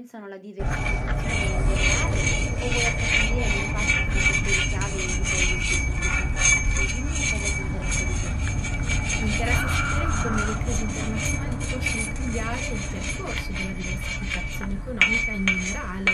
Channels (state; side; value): identical; both; correlation 1.00